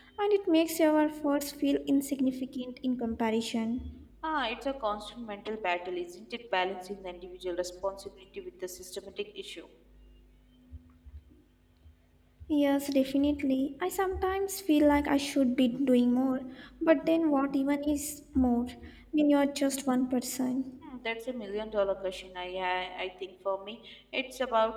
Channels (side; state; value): both; identical; correlation 1.00